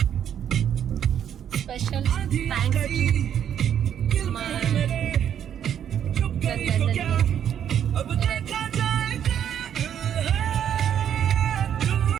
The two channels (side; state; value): left; quieter; 9.4 dB